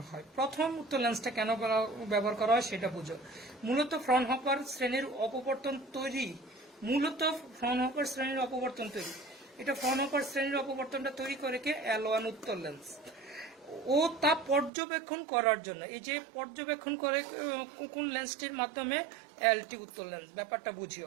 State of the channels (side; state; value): left; drops out; at 14.7 s